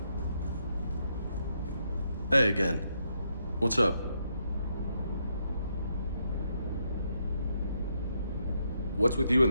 Hey again. What's up? What's with you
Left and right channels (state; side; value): inverted; both; correlation -0.78